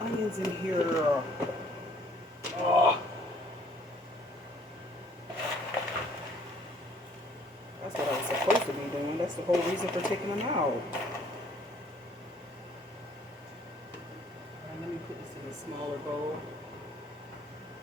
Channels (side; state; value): both; normal; correlation 0.60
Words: in here? Oh. That's what I was supposed to be doing. That's the whole reason for taking them out. Alright, let me put this in a smaller bowl.